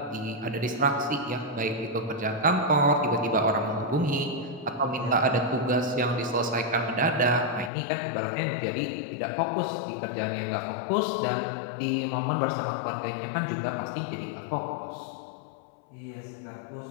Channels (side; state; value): right; drops out; at 7.7 s